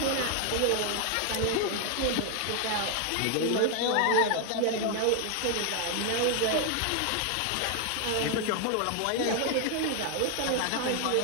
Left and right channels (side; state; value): both; different; correlation 0.00